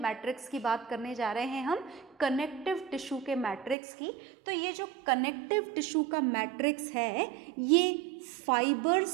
मैट्रिक्स की बात करने जा रहे हैं हम? कनेक्टिव टिश्यू के मैट्रिक्स की. तो ये जो कनेक्टिव टिश्यू का मैट्रिक्स है ये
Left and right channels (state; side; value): drops out; left; at 3.8 s